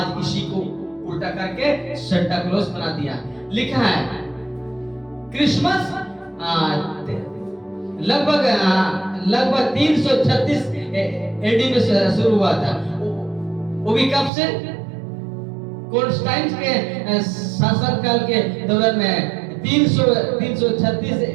इसी को उल्टा करके सेंटा क्लॉज बना दिया। लिखा है क्रिसमस लगभग 336 एडी में शुरू हुआ था। वो भी कब से? कॉन्स्टेंटाइन के शासन काल के दौरान में 336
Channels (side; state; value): left; drops out; at 14.3 s